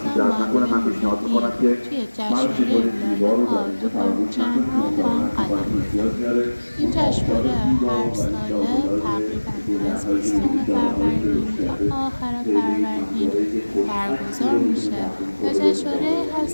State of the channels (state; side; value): inverted; both; correlation -1.00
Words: هم توی جشنواره لاله‌ها تو پرچم‌ها با هم قدم بزنیم. این جشنواره هر ساله تقریبا از 20 فروردین تا آخر فروردین برگزار میشه و جشنواره